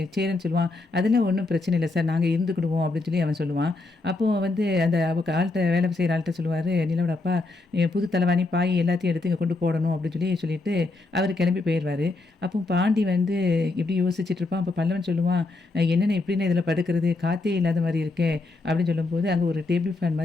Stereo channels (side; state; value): right; quieter; 3.3 dB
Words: சேரன் சொல்லுவான், அதெல்லாம் ஒன்றும் பிரச்சனை இல்லை சார், நாங்கள் இருந்துக்கிடுவோம் அப்படின்னு சொல்லி அவன் சொல்லுவான். அப்போது வந்து அந்த ஆள்கிட்ட வேலை செய்கிற ஆள்கிட்ட சொல்லுவார் நிலாவோட அப்பா, புது தலைவாணி பாய் எல்லாத்தையும் எடுத்து இங்கே கொண்டு போடணும் அப்படின்னு சொல்லிட்டு அவர் கிளம்பி போயிடுவார். அப்போ பாண்டி வந்து இப்படி யோசிச்சுட்டு இருப்பான். அப்போ பல்லவன் சொல்லுவான், என்னென்ன எப்படின்னு இதில் படுக்கிறது, காற்றே இல்லாத மாதிரி இருக்கே அப்படின்னு சொல்லும்போது அங்கே ஒரு டேபிள் ஃபேன்